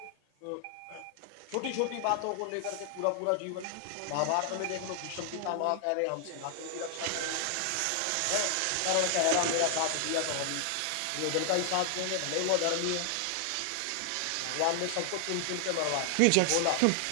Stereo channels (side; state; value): both; different; correlation 0.00